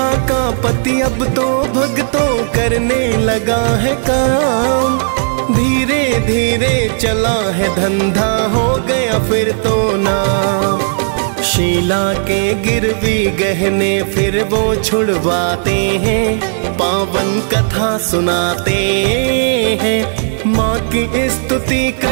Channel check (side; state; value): left; silent; digital silence